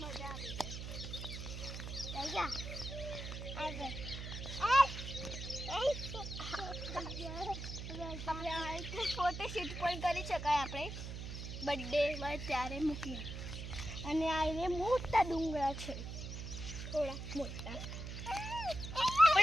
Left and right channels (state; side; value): noise; right; hum, 7 dB below the sound